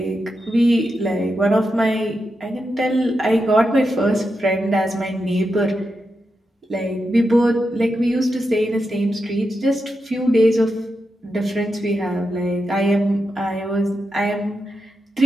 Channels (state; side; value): normal; both; correlation 0.87